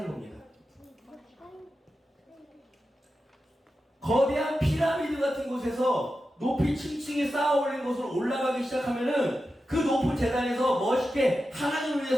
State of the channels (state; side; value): normal; both; correlation 0.91